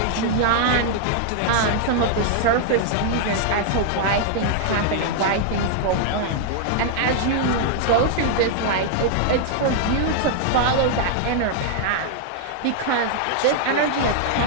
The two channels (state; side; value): different; both; correlation -0.01